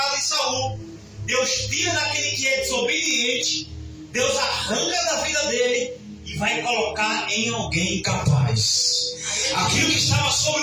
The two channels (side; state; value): both; identical; correlation 1.00